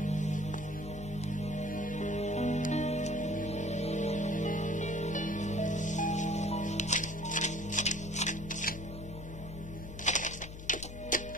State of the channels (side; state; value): left; noise; hum, 10 dB below the sound